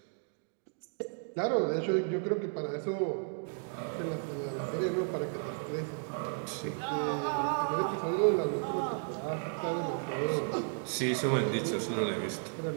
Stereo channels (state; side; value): silent; left; 55 dB below the other